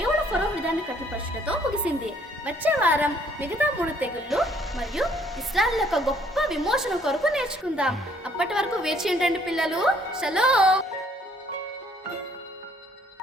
ఫరో హృదయాన్ని కఠినపరచుటతో ముగిసింది. వచ్చే వారం మిగతా 3 తెగుళ్ళు మరియు ఇశ్రాయేలు యొక్క గొప్ప విమోచన కొరకు నేర్చుకుందాం. అప్పటి వరకు వేచి ఉండండి పిల్లలు. షలోమ్.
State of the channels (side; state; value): both; normal; correlation 0.63